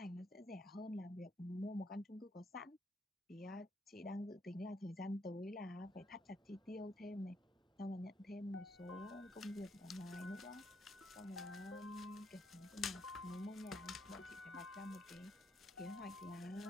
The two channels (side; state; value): both; normal; correlation 0.75